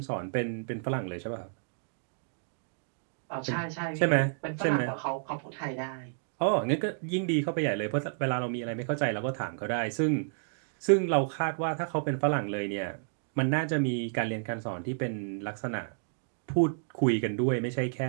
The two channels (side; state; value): left; silent; digital silence